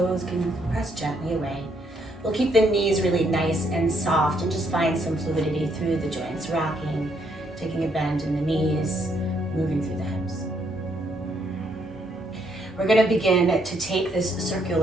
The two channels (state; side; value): normal; both; correlation 0.72